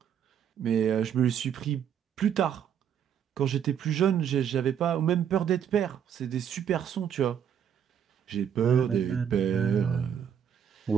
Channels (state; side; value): quieter; left; 8.7 dB